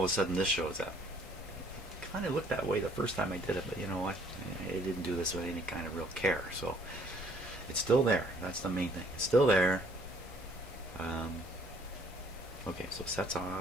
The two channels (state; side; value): normal; both; correlation 0.60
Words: a sudden this shows up. It kind of looked that way the first time I did it, but you know what? I didn't do this with any kind of real care. So it's still there. That's the main thing. It's still there. Okay, so set's